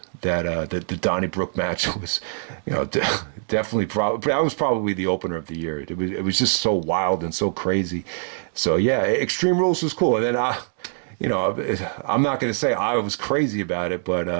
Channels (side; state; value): left; silent; digital silence